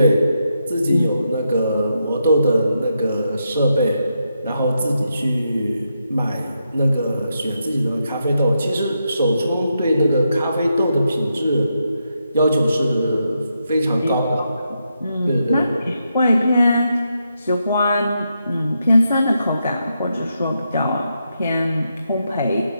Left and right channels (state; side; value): inverted; both; correlation -0.83